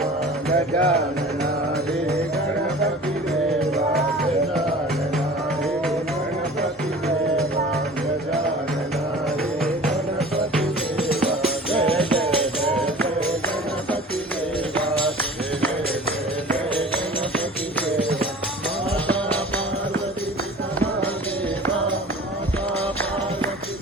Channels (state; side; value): normal; both; correlation 0.42